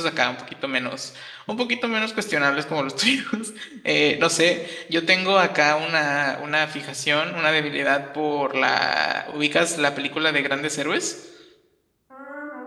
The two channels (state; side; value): identical; both; correlation 1.00